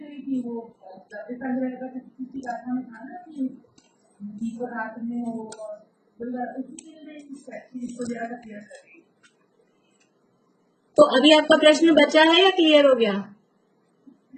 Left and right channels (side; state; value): both; identical; correlation 1.00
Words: थी, वो किसी आत्मा में था ना कि जीवन रात में हो, इसको ज्यादा क्लियर कर रही। तो अभी आपका प्रश्न बचा है या क्लियर हो गया?